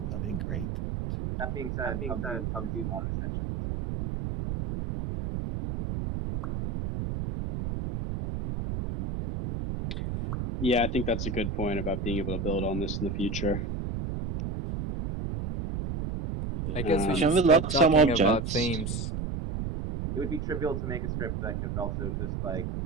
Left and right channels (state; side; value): noise; right; rumble, 3 dB below the sound